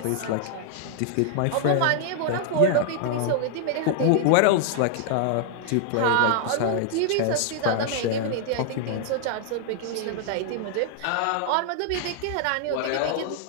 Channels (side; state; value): both; different; correlation 0.00